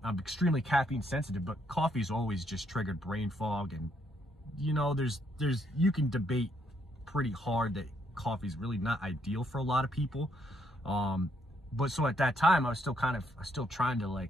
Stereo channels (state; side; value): normal; both; correlation 0.73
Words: extremely caffeine sensitive, but coffee's always just triggered brain fog. And, you know, you can debate pretty hard that coffee's really not ideal for a lot of people. But so at that time, I was still trying to